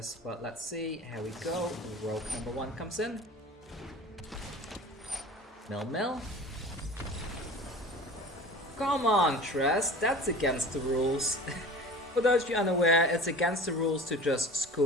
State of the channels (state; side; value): normal; both; correlation 0.39